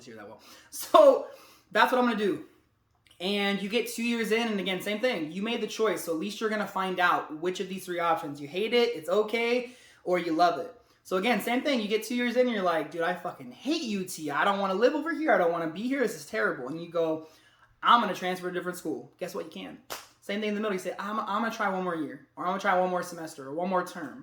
here that well. So that's what I'm going to do. And you get 2 years in, and again, same thing. You made the choice, so at least you're going to find out which of these three options. You hate it, it's okay, or you love it. So again, same thing. You get 2 years in, and you're like, dude, I fucking hate UT. I don't want to live over here. I don't want to be here. This is terrible. And you go, I'm going to transfer to a different school. Guess what? You can. Same thing in the middle. You say, I'm going to try one more year, or I'm going to try one more semester, or one more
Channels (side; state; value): both; identical; correlation 1.00